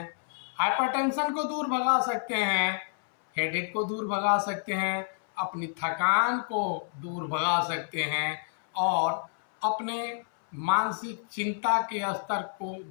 हाइपरटेंशन को दूर भगा सकते हैं, हेडेक को दूर भगा सकते हैं, अपनी थकान को दूर भगा सकते हैं और अपने मानसिक चिंता के स्तर को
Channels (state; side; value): silent; right; 59 dB below the other